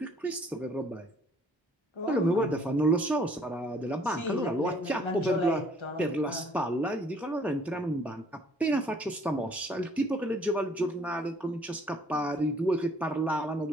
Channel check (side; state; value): both; normal; correlation 0.60